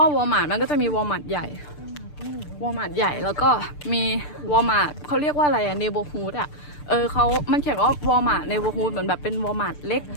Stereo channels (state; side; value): late; right; 6.8 ms